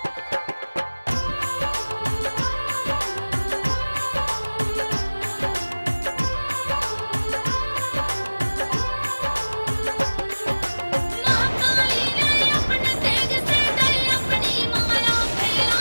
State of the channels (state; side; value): inverted; both; correlation -1.00